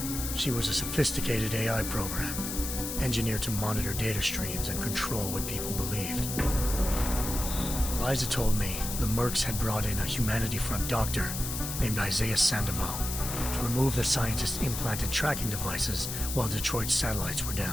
She was a sophisticated AI program, engineered to monitor data streams and control what people believed. Eliza told me the Mercs had brought in a Humanity Front doctor named Isaiah Sandoval to remove the scientist's implanted tracking devices while Detroit's satellites were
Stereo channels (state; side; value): noise; left; hiss, 5 dB below the sound